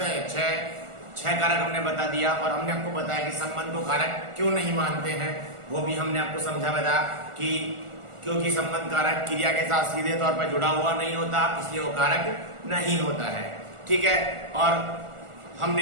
हैं? 6 कारक हमने बता दिया। और हमने आपको बताया कि संबंध को कारक क्यों नहीं मानते हैं, वो भी हमने आपको समझा बताया कि क्योंकि संबंध कारक क्रिया के साथ सीधे तौर पर जुड़ा हुआ नहीं होता, इसलिए वो कारक नहीं होता है। ठीक है। और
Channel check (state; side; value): late; left; 1.4 ms